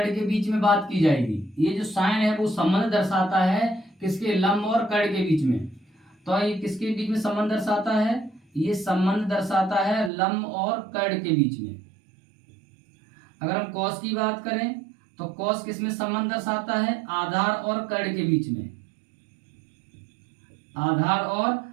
के बीच में बात की जाएगी, ये जो साइन है वो संबंध दर्शाता है किसके, लंब और कर्ण के बीच में। तो ये किसके बीच में संबंध दर्शाता है, ये संबंध दर्शाता है लंब और कर्ण के बीच में। अगर हम कॉस की बात करें तो कॉस किस में संबंध दर्शाता है, आधार और कर्ण के बीच में, आधार और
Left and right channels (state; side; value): drops out; left; at 10.1 s